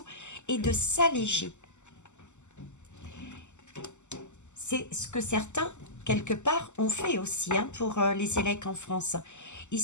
et de s'alléger. C'est ce que certains, quelque part, ont fait aussi pour les élèves en France.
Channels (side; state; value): right; late; 0.84 ms